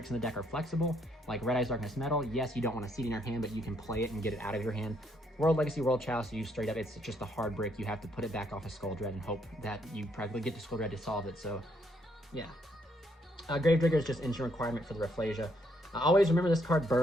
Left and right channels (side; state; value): both; normal; correlation 0.72